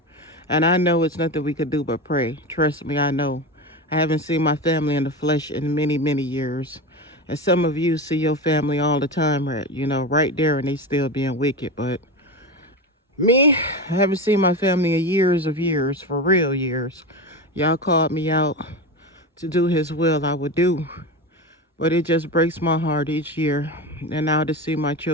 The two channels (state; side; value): normal; both; correlation 0.22